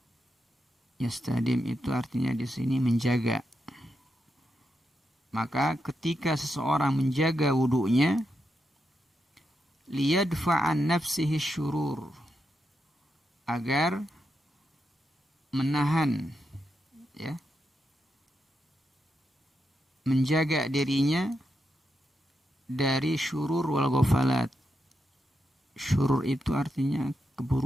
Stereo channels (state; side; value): normal; both; correlation 0.85